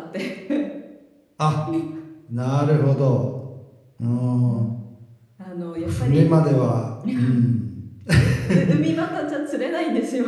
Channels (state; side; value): identical; both; correlation 1.00